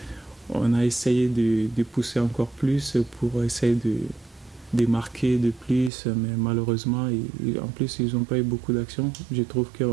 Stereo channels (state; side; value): drops out; left; at 5.9 s